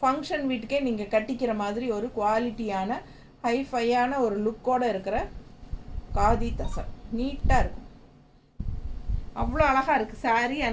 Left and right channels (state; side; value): identical; both; correlation 1.00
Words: வீட்டுக்கே நீங்கள் கட்டிக்கிற மாதிரி ஒரு குவாலிட்டியான ஹைஃபையான ஒரு லுக்கோடு இருக்கிற காதி தசர். நீட்டாக இருக்கும், அவ்வளோ அழகாக இருக்குது சாரீ.